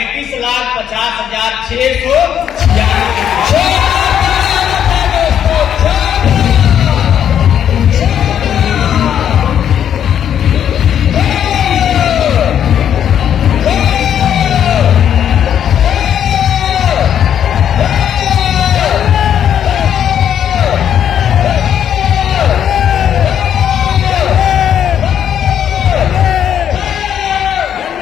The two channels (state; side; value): quieter; right; 9.4 dB